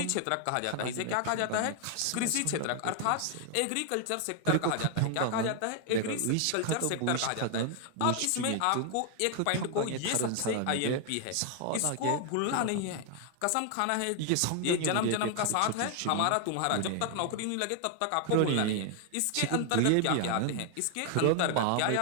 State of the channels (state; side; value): different; both; correlation 0.00